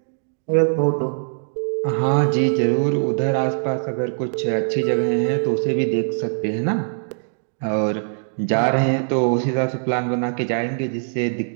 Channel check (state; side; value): silent; left; digital silence